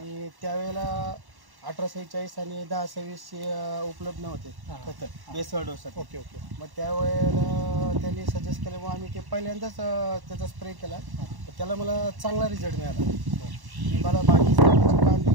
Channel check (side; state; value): left; late; 1.1 ms